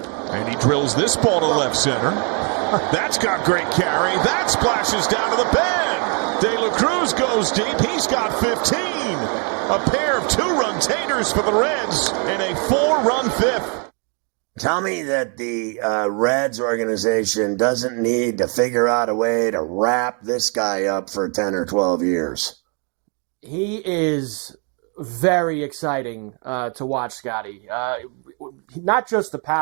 And he drills this ball to left center. That's got great carry. That splashes down to the bend. De La Cruz goes deep. He's got 15. A pair of 2-run taters for the Reds and a 4-run fifth. Tell me that the Reds organization doesn't need to figure out a way to wrap this guy up for 10 or 12 years. He is very exciting to watch, Scotty. Not just the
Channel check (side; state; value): left; quieter; 38.2 dB